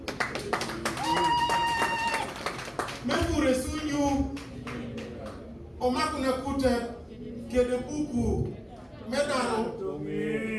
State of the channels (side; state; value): both; identical; correlation 1.00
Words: mekure sunyu omakuna kuta kede buku medaro